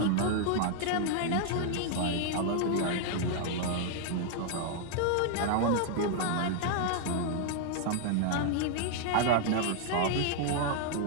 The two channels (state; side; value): different; both; correlation 0.00